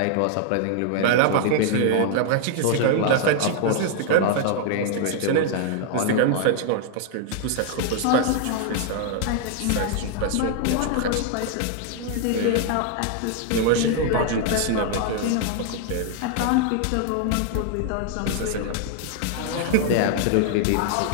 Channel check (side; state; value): both; different; correlation 0.00